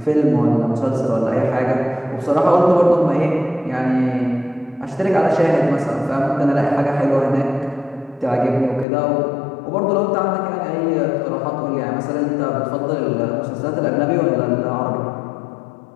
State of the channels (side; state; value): right; drops out; at 8.8 s